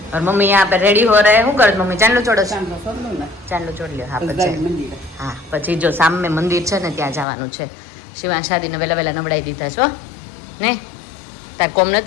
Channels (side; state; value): right; drops out; at 7.2 s